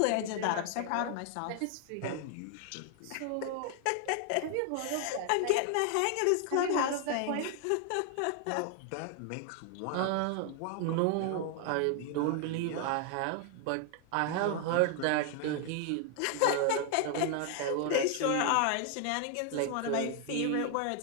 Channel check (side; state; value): both; different; correlation 0.00